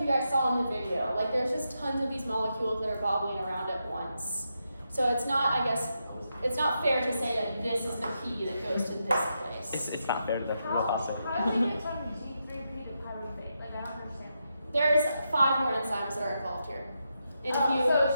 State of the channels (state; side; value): inverted; both; correlation -0.84